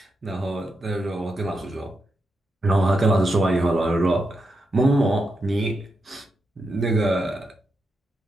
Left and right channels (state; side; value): normal; both; correlation 0.85